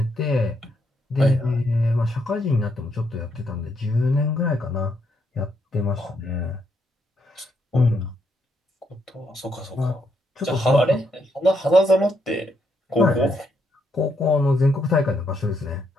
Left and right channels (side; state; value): both; normal; correlation 0.76